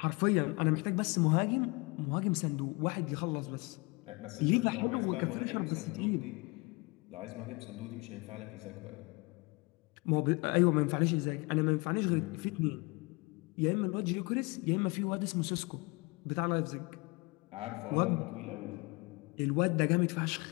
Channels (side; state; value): right; quieter; 27.2 dB